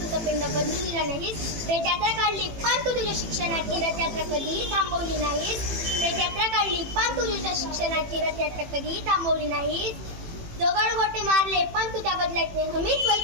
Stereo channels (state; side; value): late; left; 18 ms